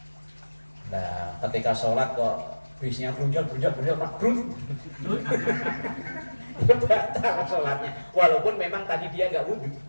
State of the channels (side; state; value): both; inverted; correlation -1.00